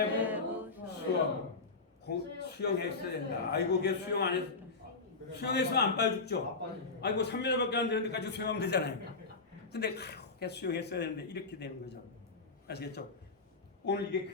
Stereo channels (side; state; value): right; quieter; 4.0 dB